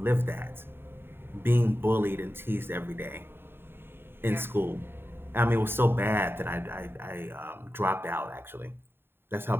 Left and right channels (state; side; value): late; left; 0.11 ms